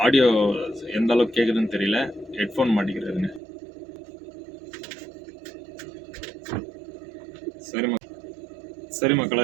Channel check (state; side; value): drops out; left; at 3.4 s